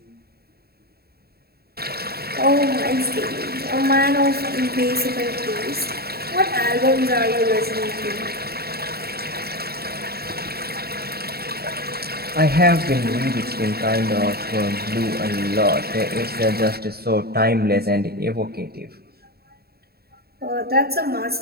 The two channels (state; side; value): late; left; 0.46 ms